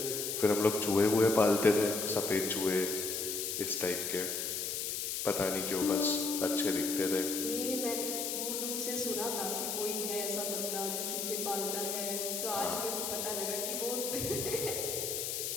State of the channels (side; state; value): left; noise; hiss, 2 dB below the sound